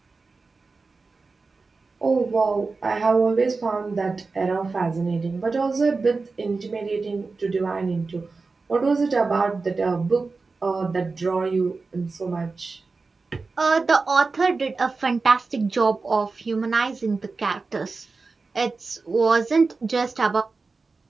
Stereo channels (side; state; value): left; quieter; 4.1 dB